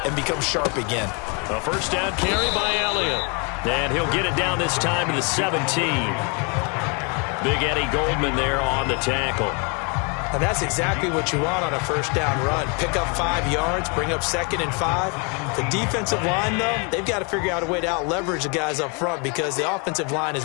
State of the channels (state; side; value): quieter; right; 33.4 dB